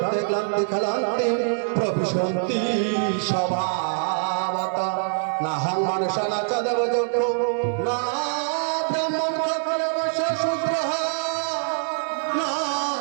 ক্লান্তি খলান্তি প্রবিশন্তি স্বভাবত নাহং মনুষ্যনা চ দেবযক্ষো না ব্রাহ্মণ ক্ষত্রিয় বৈশ্য শূদ্রঃ না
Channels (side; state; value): left; silent; digital silence